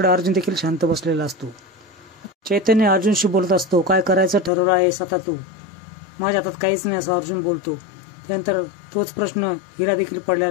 अर्जुन देखील शांत बसलेला असतो। चैतन्य अर्जुनशी बोलत असतो, काय करायचं ठरवलं आहेस आता तू। माझ्या हातात काहीच नाही असं अर्जुन बोलतो। त्यानंतर तोच प्रश्न हिला देखील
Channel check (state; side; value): drops out; right; at 4.5 s